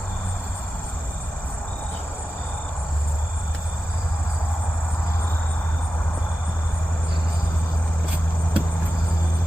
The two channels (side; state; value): both; normal; correlation 0.93